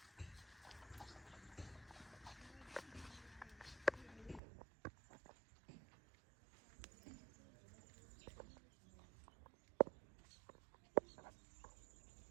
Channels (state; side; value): drops out; left; at 4.4 s